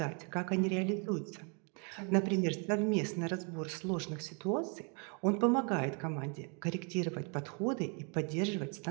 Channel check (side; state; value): left; quieter; 36.5 dB